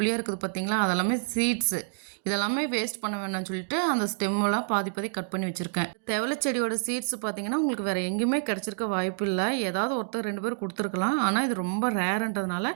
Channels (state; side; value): silent; left; digital silence